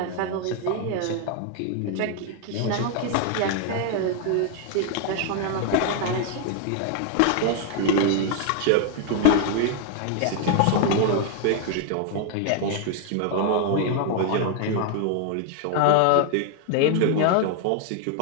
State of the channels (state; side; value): different; both; correlation 0.00